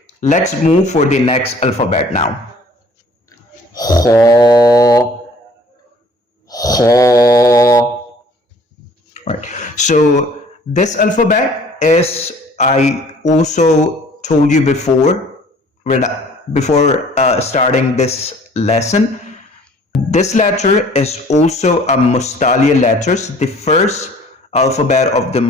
Let's move for the next alphabet now. خا خا. Right. So this alphabet is, I also told you before, before starting this lesson, this letter is also a Mustalia letters, the first alphabet of the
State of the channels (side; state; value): both; normal; correlation 0.54